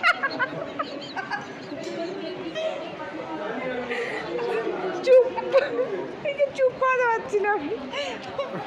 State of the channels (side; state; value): both; identical; correlation 1.00